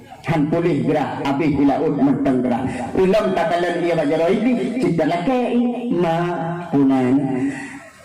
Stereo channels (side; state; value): both; identical; correlation 1.00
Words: han pulih gerah habis di laut menteng gerah ulam takalan ia bajaro ini cita laki ma punan